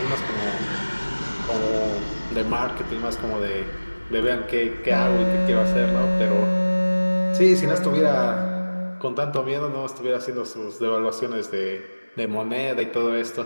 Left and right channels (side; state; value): both; inverted; correlation -1.00